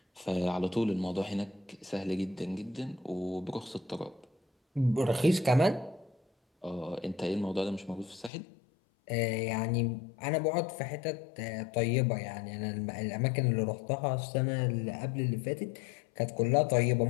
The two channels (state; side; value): drops out; right; at 8.3 s